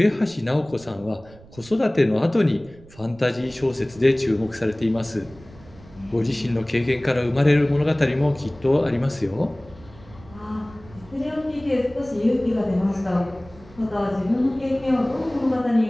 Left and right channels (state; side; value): noise; right; rumble, 22 dB below the sound